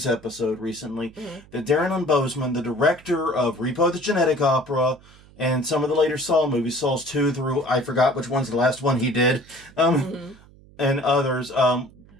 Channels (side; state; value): right; noise; hum, 25 dB below the sound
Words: episode recently that Darren Lynn Bousman, the director of Repo the Genetic Opera and some of the later Saw movies, Saws 2 through, I forgot which one's the last one he did, and others,